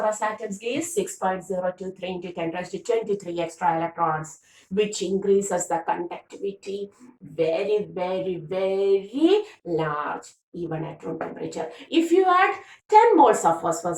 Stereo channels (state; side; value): identical; both; correlation 1.00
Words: atoms gives 6.023 into 10 raised to 23 extra electrons, which increases the conductivity very, very, very large, even at room temperature. If you add 10 moles of